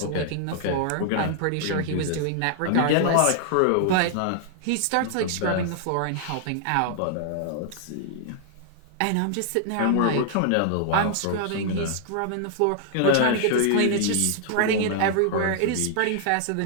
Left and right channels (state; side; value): different; both; correlation 0.00